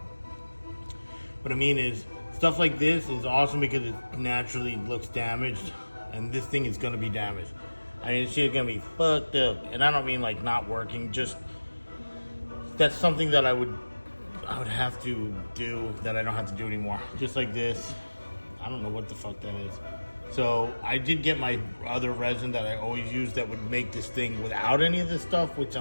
What I mean is, stuff like this is awesome because it naturally looks damaged. And this thing is going to be damaged. I mean, this shit's going to be fucked up. And I don't mean like not working, just that's something that I would have to do that I don't have to do anymore. Just like this. I don't know what the fuck that is. So I did get my other resin that I always use that would make this thing without any of this stuff, which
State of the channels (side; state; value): both; inverted; correlation -1.00